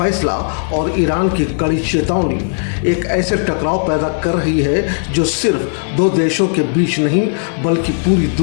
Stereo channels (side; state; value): right; silent; 56 dB below the other